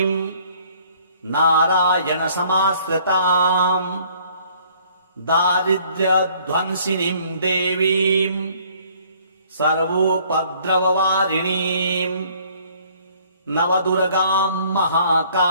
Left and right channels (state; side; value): inverted; both; correlation -0.59